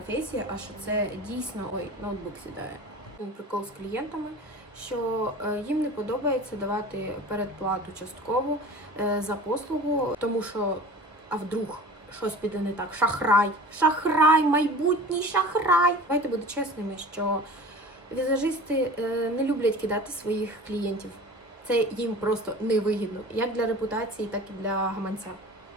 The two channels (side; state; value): both; normal; correlation 0.39